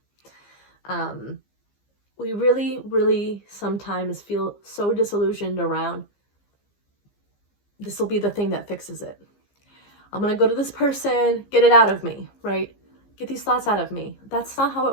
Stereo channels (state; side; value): late; right; 15 ms